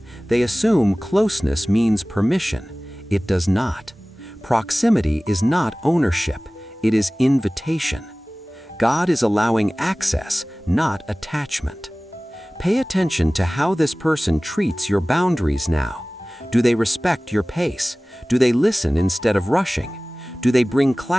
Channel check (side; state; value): both; normal; correlation 0.98